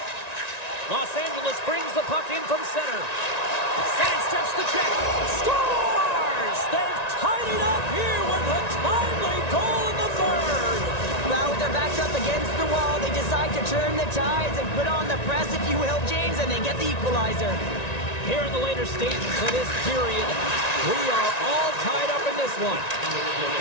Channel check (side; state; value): right; late; 1.9 ms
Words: Los Angeles brings the puck in from center. Sidesteps the check. Scores! They've tied it up here with a timely goal in the third. Well, with their backs up against the wall, they decide to turn the tides and put on the press, if you will, James, and they get the equalizer. Here in the later stages of this period, we are all tied up in this one.